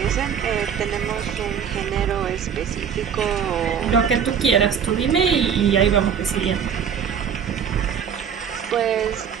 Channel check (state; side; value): quieter; left; 7.6 dB